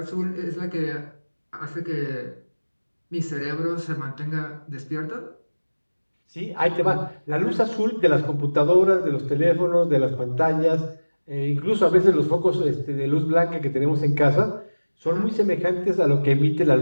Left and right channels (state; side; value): inverted; both; correlation -1.00